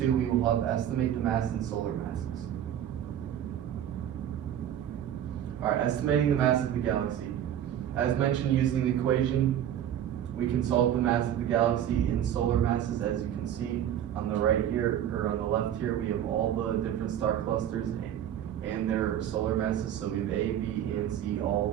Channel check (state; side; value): quieter; left; 10.5 dB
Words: we will help estimate the mass in solar masses. Alright, estimating the mass of the galaxy. As mentioned, using the equation, we can solve the mass of the galaxy in solar masses. As you can see on the right here, or on the left here, we have all the different star clusters and their solar masses. So we have A, B, and C,